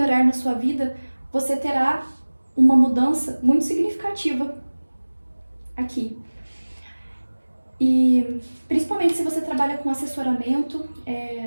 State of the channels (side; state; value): both; inverted; correlation -1.00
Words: na sua vida, você terá uma mudança muito significativa aqui. E principalmente se você trabalha com assessoramento,